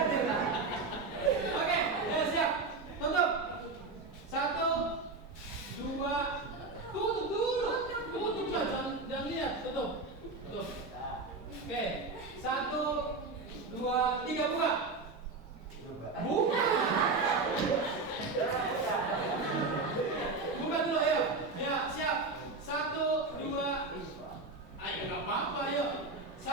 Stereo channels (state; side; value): quieter; left; 3.7 dB